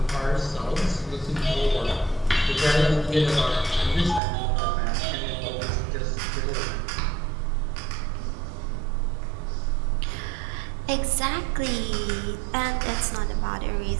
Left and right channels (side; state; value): left; drops out; at 4.2 s